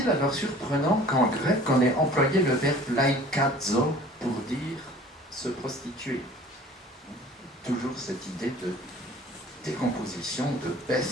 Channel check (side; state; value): both; normal; correlation 0.47